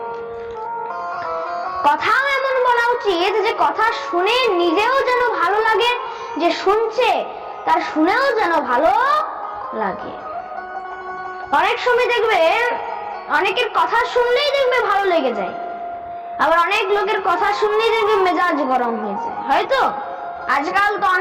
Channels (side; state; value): both; identical; correlation 1.00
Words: কথাও এমন বলা উচিত যে কথা শুনে নিজেও যেন ভালো লাগে, যে শুনছে তার শুনেও যেন ভালো লাগে। অনেক সময় দেখবে অনেকের কথা শুনলেই দেখবে ভালো লেগে যায়, আবার অনেক লোকের কথা শুনলেই দেখবে মেজাজ গরম হয়ে যায়। হয়তো আজকাল তো